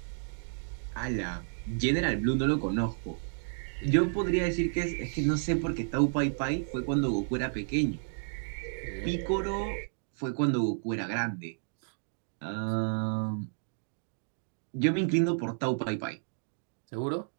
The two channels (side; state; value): left; silent; digital silence